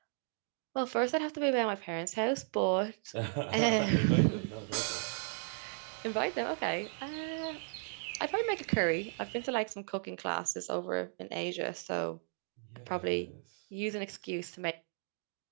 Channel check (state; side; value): silent; left; 54 dB below the other